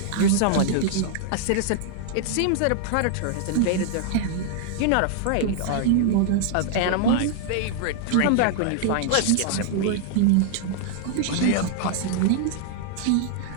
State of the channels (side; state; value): both; different; correlation -0.01